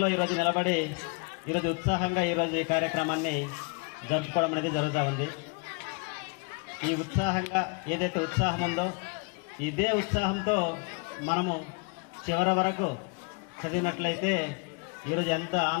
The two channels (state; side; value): quieter; right; 32.0 dB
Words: ఈరోజు నిలబడి ఈరోజు ఉత్సాహంగా ఈరోజు ఈ కార్యక్రమాన్ని జరుపుకోవడం అనేది జరుగుతూ ఉంది. ఈ ఉత్సాహంగా ఏదైతే ఉత్సాహం ఉందో ఇదే ఉత్సాహంతో మనము చివరి వరకు చదివినట్లయితే ఈరోజు ఎంత